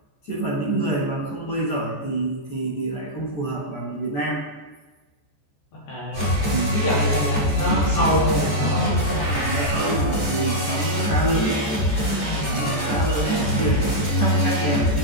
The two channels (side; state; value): right; late; 14 ms